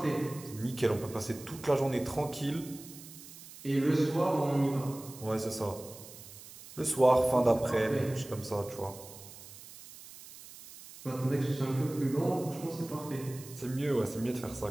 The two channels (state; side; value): noise; right; hiss, 17 dB below the sound